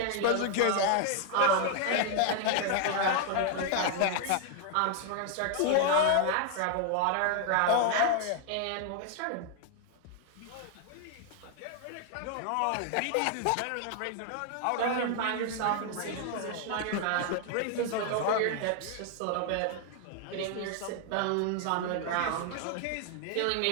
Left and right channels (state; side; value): different; both; correlation 0.00